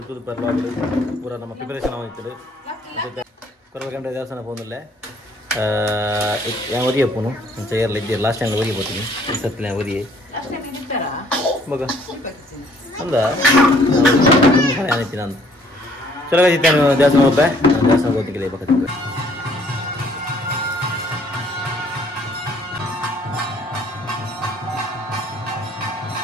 per vlog ಪೂರಾ ನಮ್ಮ preparation ಆಗಿತ್ತು. Coral ಕಂಡ್ರೆ ದೇವಸ್ಥಾನ ಹೋಗಲ್ಲ. yang wadi apa nu? Mencari lagi last yang wadi apa ini? Setelah yang wadi. Last yang ini pera? Baga. Anda? Kamu yang ini nanti. Coba kita jasa mau apa? Jasa mau tinggal apa kita?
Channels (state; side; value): normal; both; correlation 0.62